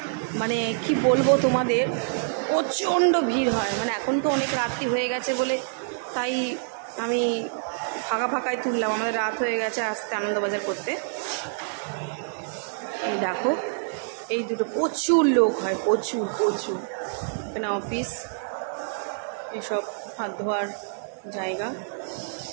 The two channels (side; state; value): left; silent; digital silence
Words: মানে কি বলবো তোমাদের, প্রচণ্ড ভিড় হয়। মানে এখন তো অনেক রাত্রি হয়ে গেছে বলে তাই আমি ফাঁকায় তুললাম, আমাদের রাত হয়ে গেছে আসতে আনন্দবাজার করতে। এই দেখো এই দুটো প্রচুর লোক হয়, প্রচুর। এখানে অফিস, এসব হাত ধোয়ার জায়গা।